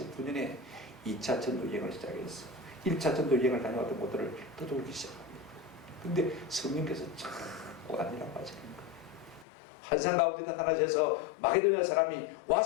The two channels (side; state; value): right; drops out; at 9.5 s